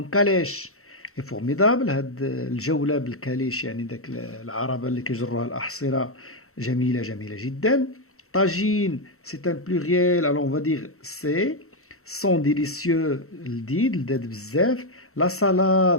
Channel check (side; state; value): right; late; 0.63 ms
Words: calèche est formidable, هاد الجولة بالكاليش يعني داك العربة اللي كيجروها الأحصرة جميلة جميلة جدا. Tagine, c'est un pluriel, alors on va dire c'est. Sont délicieux, l'did bzef. La